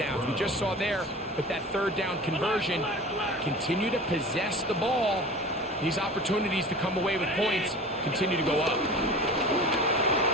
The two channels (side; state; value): both; normal; correlation 0.37